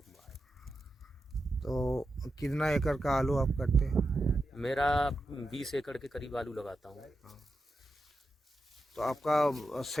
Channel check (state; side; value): normal; both; correlation 0.89